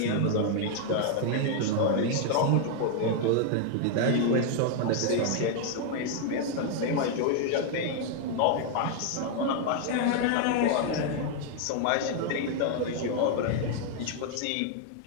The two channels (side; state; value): both; different; correlation 0.00